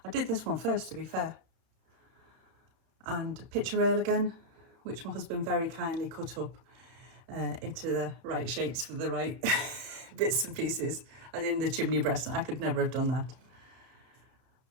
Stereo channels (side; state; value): left; late; 31 ms